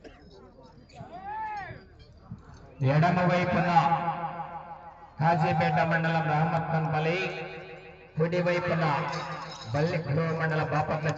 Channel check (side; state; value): both; identical; correlation 1.00